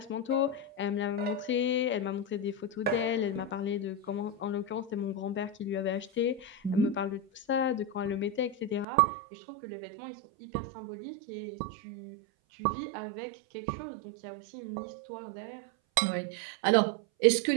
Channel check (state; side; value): drops out; left; at 8.8 s